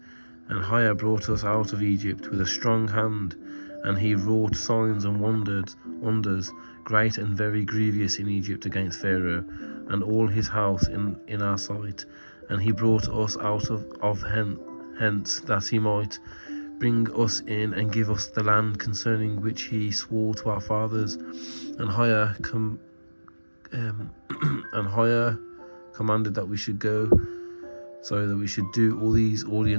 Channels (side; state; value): both; inverted; correlation -1.00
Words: and higher brought us out of Egypt with a strong hand, and he wrought signs and wonders, great and very grievous in Egypt against Pharaoh and all his house in our sight. And he brought us out of hence, that he might bring us in and give us the land concerning which he swore to our fathers. And higher commanded that we should go, so that we should do all these